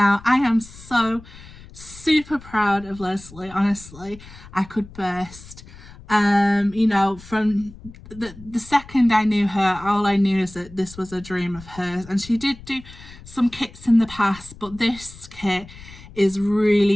I am so super proud of Lesley. Honestly, I could burst. You know, from the second I knew her, all I knew is that this was a dream of hers, and she did do some kits in the past, but this kit is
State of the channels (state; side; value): noise; left; rumble, 19 dB below the sound